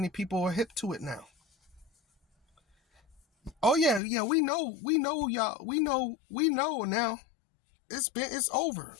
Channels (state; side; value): drops out; right; at 4.0 s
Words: people are hip to it now. Oh yeah, we know y'all. We know now. It's over.